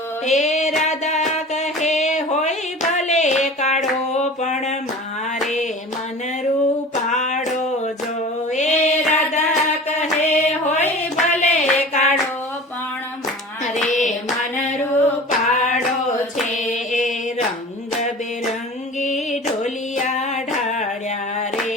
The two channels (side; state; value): both; normal; correlation 0.39